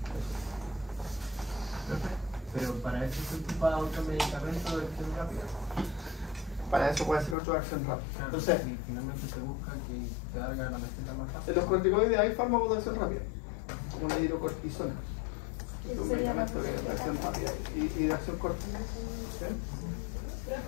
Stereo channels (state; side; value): drops out; right; at 7.4 s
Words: Pero para eso se ocupa otro medicamento de acción rápida. Para eso puede ser otro de acción rápida. Claro, Entonces, y finalmente se busca que te haga la receta más en rápida. los corticoides hay fármacos de acción rápida, como la hidrocortisona. Es un medicamento de acción rápida y de acción corta. ¿Sí?